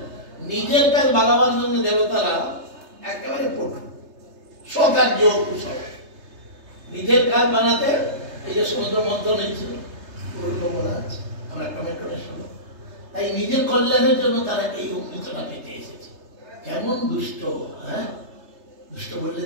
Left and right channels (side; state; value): left; late; 3.3 ms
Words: নিজের কাজ বাগাবার জন্য দেবতারা একেবারে পটু। স্বকার্য কুশল, নিজের কাজ বানাতে। এই যে সমুদ্র মন্থন হয়েছিল, বলা আছে, আমরা টমেটোটা শুনো। তাই নিজের কল্যাণের জন্য তারা এই অমৃতটা পেতে এসেছে। কেমন দুষ্ট! হ্যাঁ, দুষ্ট বললে